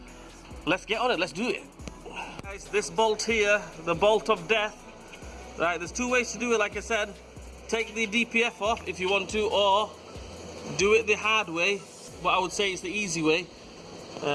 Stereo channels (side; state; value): both; identical; correlation 1.00